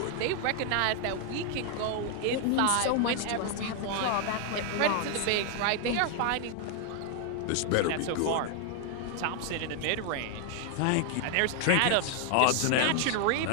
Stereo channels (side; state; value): both; different; correlation 0.00